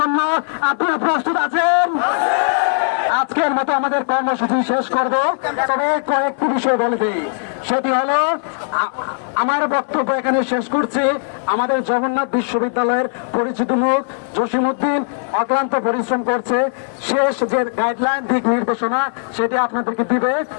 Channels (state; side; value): silent; right; 61 dB below the other